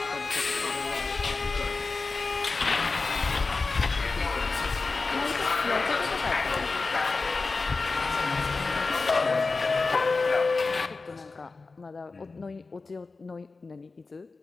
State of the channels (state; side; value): quieter; right; 4.0 dB